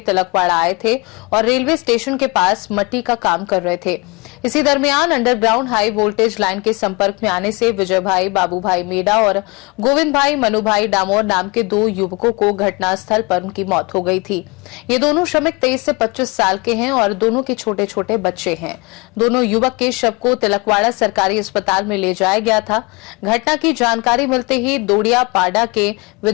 आए थे और रेलवे स्टेशन के पास मट्टी का काम कर रहे थे। इसी दरमियान अंडरग्राउंड हाई वोल्टेज लाइन के संपर्क में आने से विजय भाई, बाबू भाई मेडा और गोविंद भाई मनु भाई डामोर नाम के 2 युवकों को घटनास्थल पर उनकी मौत हो गई थी। ये दोनों श्रमिक 23 से 25 साल के हैं और दोनों के छोटे छोटे बच्चे हैं। दोनों युवक के शव को तिलकवाड़ा सरकारी अस्पताल में ले जाया गया था। घटना की जानकारी मिलते ही दोड़िया पाडा के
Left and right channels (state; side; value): quieter; right; 27.9 dB